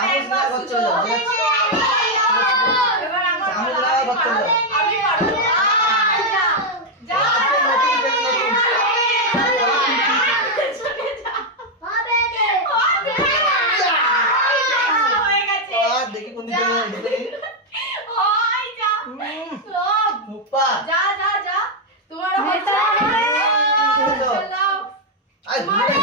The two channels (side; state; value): both; normal; correlation 0.01